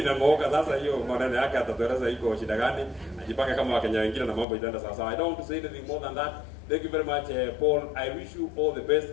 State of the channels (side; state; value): right; drops out; at 4.5 s